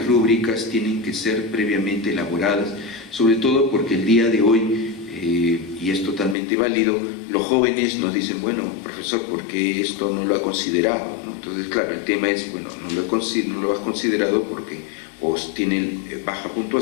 rúbricas tienen que ser previamente elaboradas, sobre todo porque el día de hoy, y es totalmente válido, los jóvenes nos dicen, bueno, profesor, ¿por qué esto no lo ha considerado?, ¿no? Entonces, claro, el tema es, bueno, no lo has considerado porque os tienen baja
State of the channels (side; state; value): right; drops out; at 6.4 s